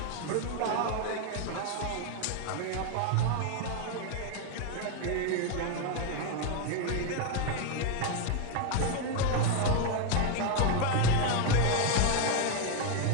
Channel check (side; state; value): both; different; correlation 0.01